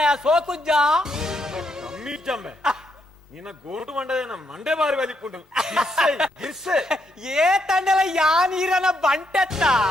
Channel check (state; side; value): normal; both; correlation 0.77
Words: ಸೋಕುಜ್ಜ ಕಮ್ಮಿ ಜಮ್ಮೆ ನಿನ್ನ ಗೋಟು ಮಂಡದೇನ ಮಂಡೆ ಬಾರಿ ಬಲಿಪುಂಡು ಗಿರ್ಸೆ ಏ ತಂಡಲ ಯಾ ನೀರನ ಬಂಟೆತ್ತ